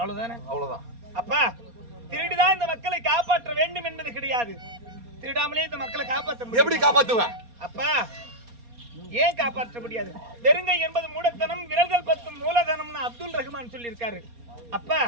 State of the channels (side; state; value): left; late; 4.2 ms